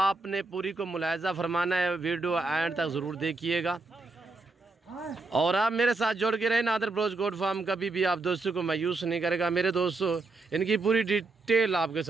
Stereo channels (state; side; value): quieter; left; 3.5 dB